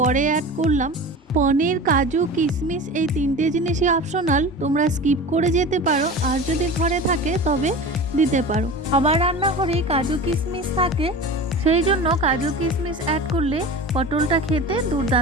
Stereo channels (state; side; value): normal; both; correlation 0.33